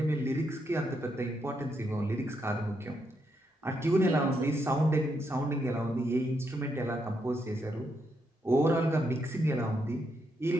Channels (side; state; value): both; normal; correlation 0.79